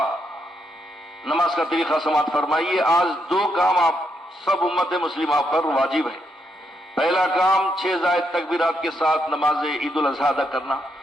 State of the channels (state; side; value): normal; both; correlation 0.79